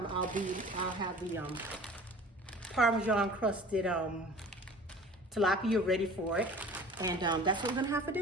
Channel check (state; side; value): normal; both; correlation 0.44